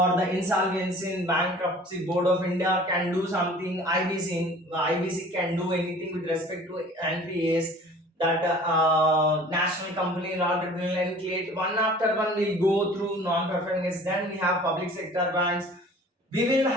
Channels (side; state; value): both; normal; correlation 0.47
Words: the Insolvency and Bankruptcy Board of India can do something, IBC can do anything with respect to NPAs, that national company law tribunal, and create one after one. We'll go through non-performing assets. Then we have public sector banks. We will